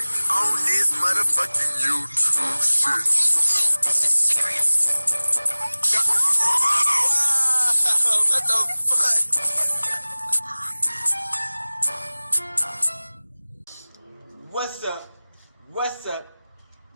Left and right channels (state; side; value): inverted; both; correlation -0.99